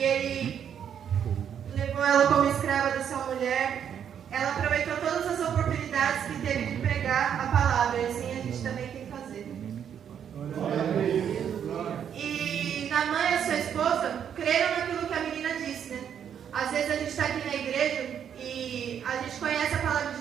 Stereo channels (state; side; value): quieter; left; 8.6 dB